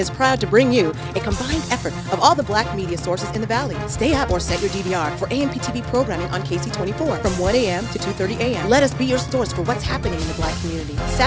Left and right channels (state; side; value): identical; both; correlation 1.00